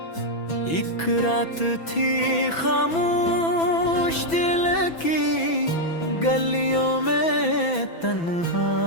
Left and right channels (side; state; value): right; late; 6.1 ms